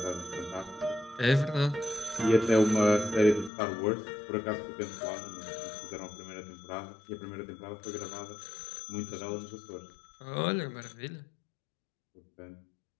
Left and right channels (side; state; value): right; drops out; at 3.5 s